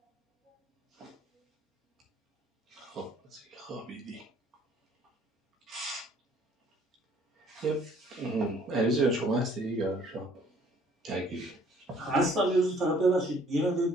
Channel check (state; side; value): normal; both; correlation 0.59